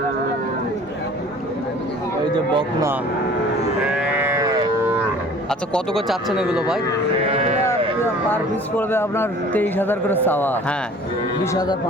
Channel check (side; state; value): both; normal; correlation 0.48